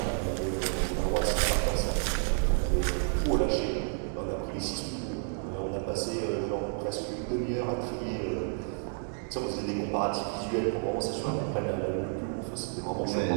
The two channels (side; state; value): left; silent; 57 dB below the other